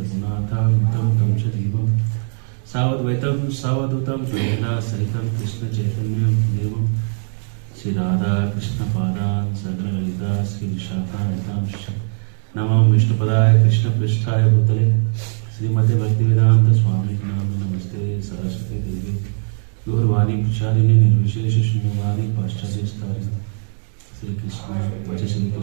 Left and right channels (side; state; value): left; silent; 66 dB below the other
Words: तं च जीवं सावद्वैतं सावधूतं प्रेरणा सहितं कृष्णचैतन्यं देवं श्री राधा कृष्ण पादान सगण ललिता श्री विशाखान्वितांश्च नमो विष्णुपदाय कृष्ण पृष्ठाय भूतले श्रीमते भक्तिवेदांत स्वामी नाम नमस्ते सरस्वती देवी गौरवाणी प्रचारिणे निर्विशेष शून्यवादी पाश्चात्य स्थारिणे श्री कृष्ण वच श्री